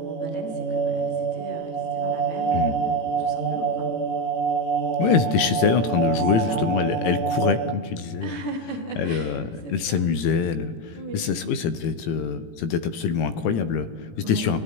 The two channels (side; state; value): right; late; 18 ms